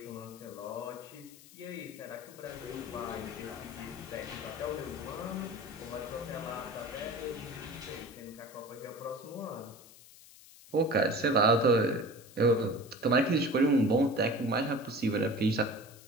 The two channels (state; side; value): noise; left; hiss, 21 dB below the sound